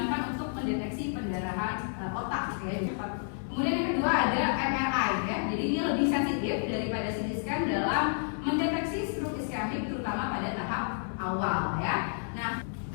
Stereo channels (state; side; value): silent; right; 58 dB below the other